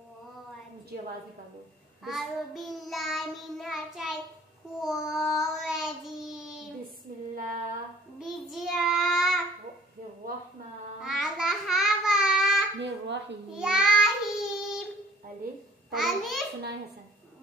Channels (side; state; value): both; normal; correlation 0.54